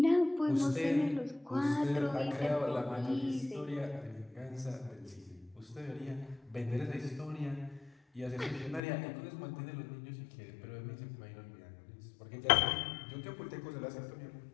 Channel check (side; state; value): right; drops out; at 8.8 s